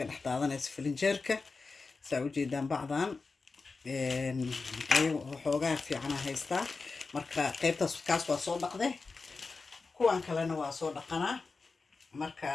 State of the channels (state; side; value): quieter; right; 4.2 dB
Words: dhaxdaadanaysa filinjeerka soo jeedaan bacdan ayagu xoogaa fiican haystaa marka qaybtaas kaas waa soo dhaqday kuwan kalena waa soo dhaqanaa marka